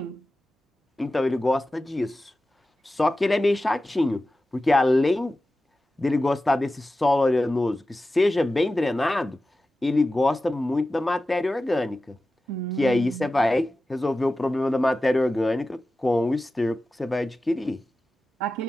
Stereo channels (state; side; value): normal; both; correlation 0.94